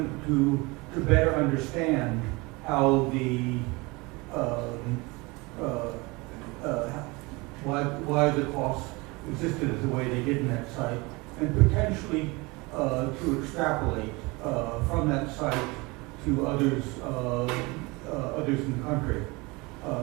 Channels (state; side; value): quieter; left; 25.0 dB